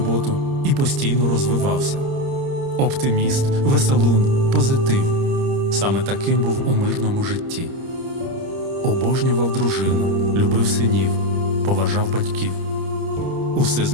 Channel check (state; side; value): late; left; 30 ms